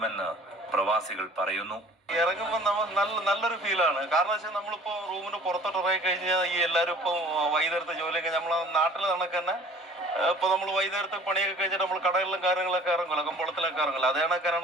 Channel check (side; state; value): both; normal; correlation 0.49